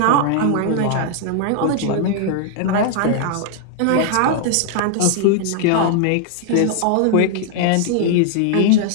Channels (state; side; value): different; both; correlation 0.00